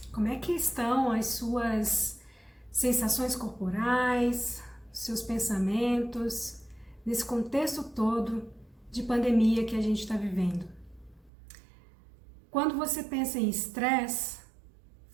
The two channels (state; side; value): drops out; left; at 11.3 s